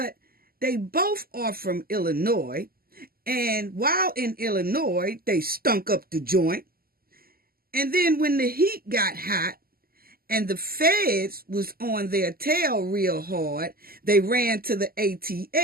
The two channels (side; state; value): left; late; 0.43 ms